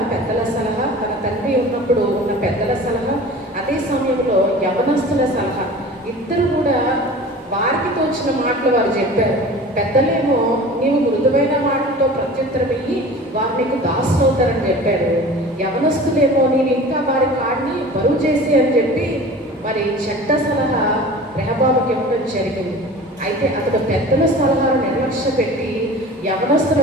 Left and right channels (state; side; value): normal; both; correlation 0.40